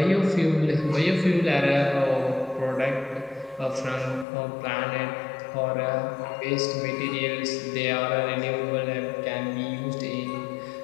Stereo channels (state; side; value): drops out; right; at 4.2 s